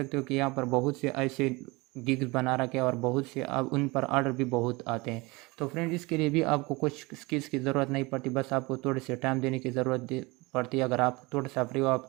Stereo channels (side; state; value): left; quieter; 24.3 dB